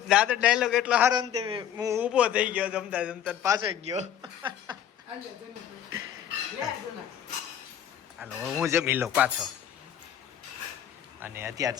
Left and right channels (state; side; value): quieter; right; 10.0 dB